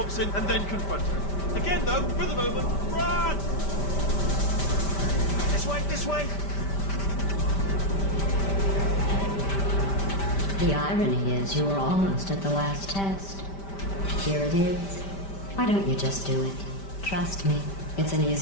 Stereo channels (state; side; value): late; right; 5.1 ms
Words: and then confront her. Again, though, for the moment, run! This way, this way. The irony is you were almost at the last test. Here it is. Why don't you just do it? Trust me, it's an